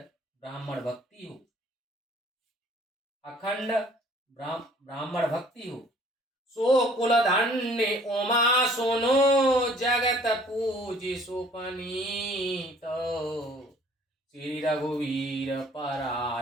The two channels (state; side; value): normal; both; correlation 0.55